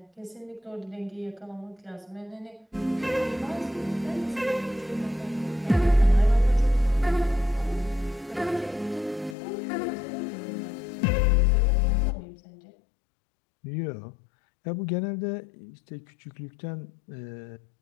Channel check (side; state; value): right; drops out; at 9.3 s